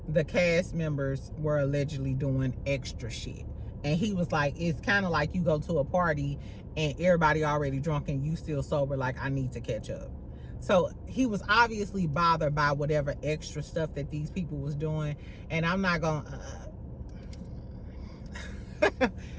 the cast members were allegedly doing extra shit. And he was like, it's kind of like you go to a party and everybody already drunk and you still sober, like, I need to catch up. So he was obviously bothered by whatever extra stuff that these people was doing. And I'm not gonna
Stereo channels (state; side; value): identical; both; correlation 1.00